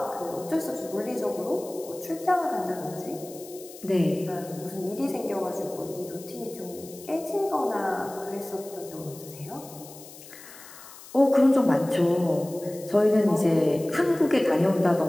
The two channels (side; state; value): left; noise; hiss, 18 dB below the sound